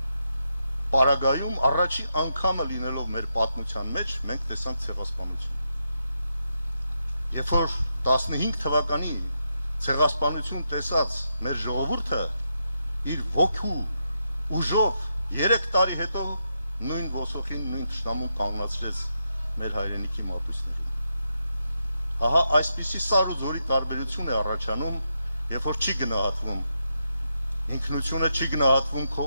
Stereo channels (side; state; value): both; inverted; correlation -0.83